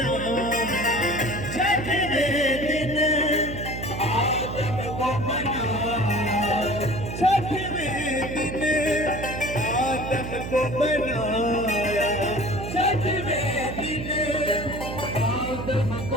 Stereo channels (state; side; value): noise; right; hum, 7 dB below the sound